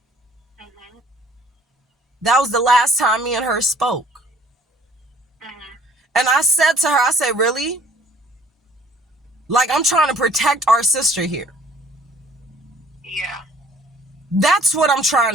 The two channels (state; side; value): normal; both; correlation 0.56